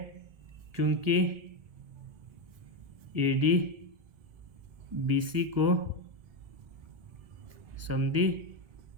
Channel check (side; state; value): left; late; 1.6 ms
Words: क्योंकि ए डी बी सी को समद्वि